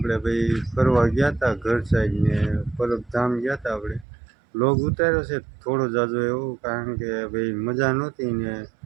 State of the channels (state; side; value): drops out; left; at 4.0 s